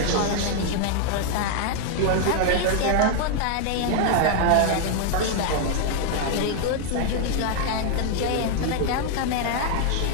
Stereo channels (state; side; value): different; both; correlation 0.00